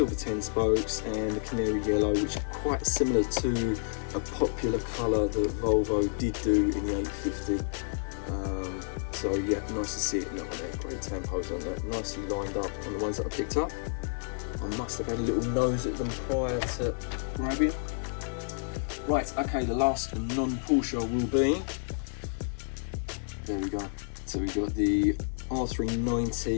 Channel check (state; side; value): silent; right; digital silence